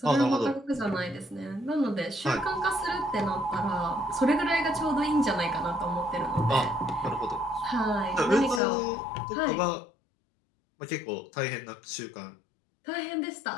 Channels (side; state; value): right; drops out; at 8.6 s